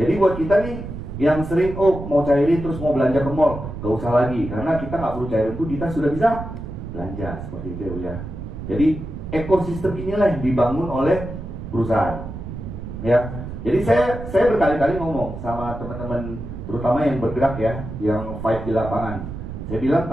buat kita nih yang sering mau cairin terus mau belanja ke mall, gak usah lagi karena kita nggak perlu cairin itu, kita sudah bisa belanja seperti itu ya. Jadi ekosistem inilah yang dibangun oleh perusahaan, ya. Jadi saya berkali-kali ngomong sama teman-teman terutama yang bergerak ya, yang fight di lapangan. Saya bilang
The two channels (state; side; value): noise; right; rumble, 9 dB below the sound